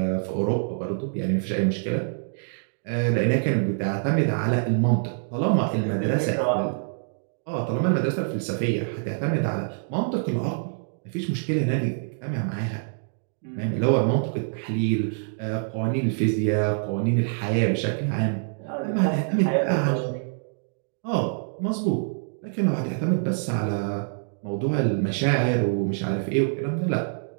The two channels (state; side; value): silent; left; digital silence